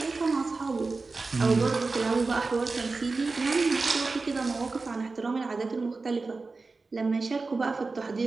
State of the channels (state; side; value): quieter; left; 3.9 dB